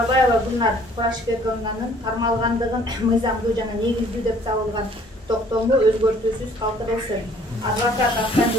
Gulnar Kurashbekovnanın karmalgandığın mıyzamlı jana negizli dep табылган токтому өзгөртүүсүз калтырылсын. Адвокат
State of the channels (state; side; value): normal; both; correlation 0.57